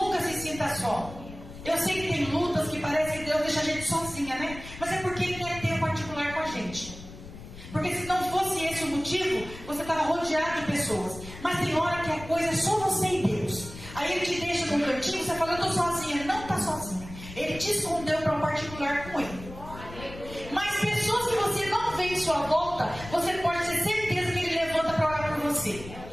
se sinta só. Eu sei que tem lutas que parece que Deus deixa a gente sozinha, né? Mas é porque Ele quer ter um particular com a gente. Porque se não fosse esse o motivo, você estava rodeado de pessoas. Mas tem hora que a coisa é só você e Deus. Aí Ele te deixa num cantinho, você fala, eu estou sozinha. Ele não está sozinha. Ele te escondeu para um particular com Ele. Mas pessoas que você não vê em sua volta, você pode ter certeza que Ele levanta para orar por você.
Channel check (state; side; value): noise; left; rumble, 14 dB below the sound